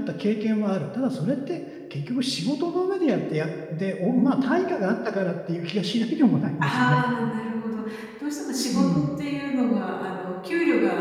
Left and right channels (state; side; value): identical; both; correlation 1.00